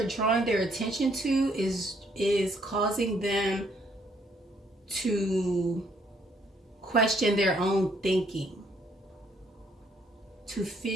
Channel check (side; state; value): both; normal; correlation 0.68